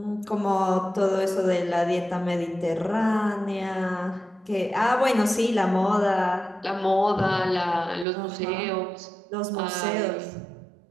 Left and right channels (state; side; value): drops out; left; at 8.1 s